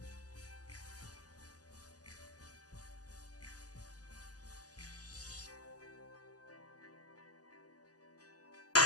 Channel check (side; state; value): right; late; 0.67 ms